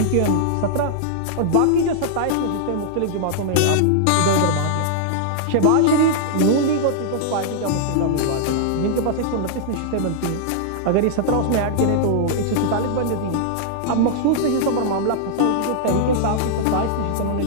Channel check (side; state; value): both; different; correlation -0.01